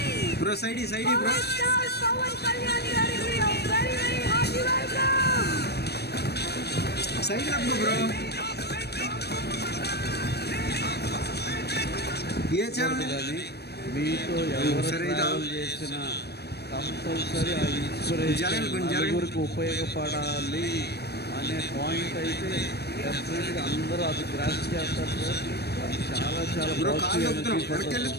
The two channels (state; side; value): late; right; 0.47 ms